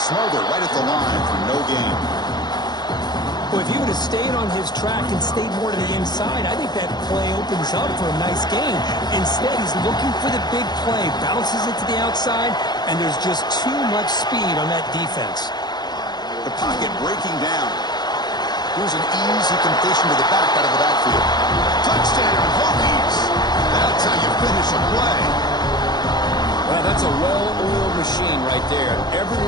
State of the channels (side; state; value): right; late; 0.20 ms